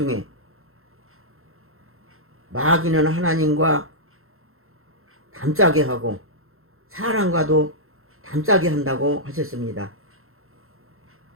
마귀는 하나님과 담짜게 하고 사람과도 담짜게 한다고 하셨습니다.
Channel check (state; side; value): late; left; 0.62 ms